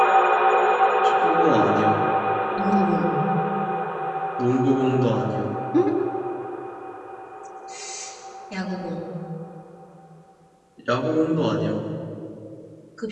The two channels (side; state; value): both; identical; correlation 1.00